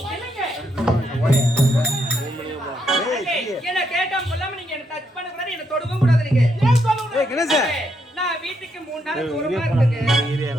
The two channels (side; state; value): both; normal; correlation 0.77